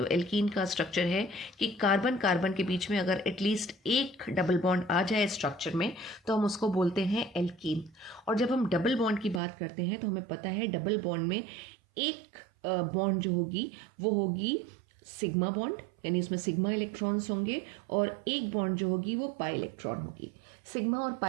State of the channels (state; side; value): drops out; left; at 9.4 s